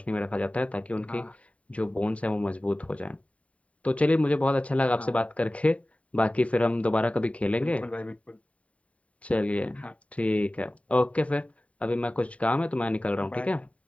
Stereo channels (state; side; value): late; right; 0.066 ms